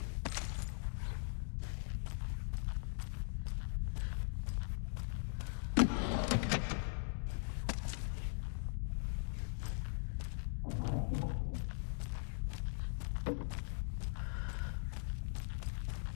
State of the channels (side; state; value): right; silent; digital silence